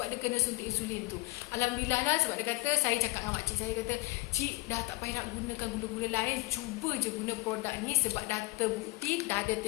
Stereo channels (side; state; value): right; quieter; 23.4 dB